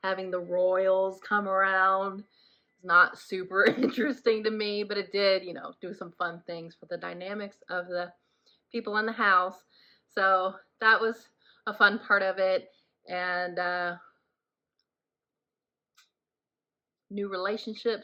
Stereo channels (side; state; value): both; identical; correlation 1.00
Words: having the royals come around is not super interesting to me. But it did, do some fun things for the dynamics of the people in the house. So that was a fun part of it. And new